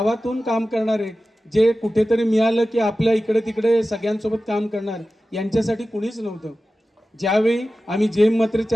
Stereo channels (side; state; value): both; normal; correlation 0.95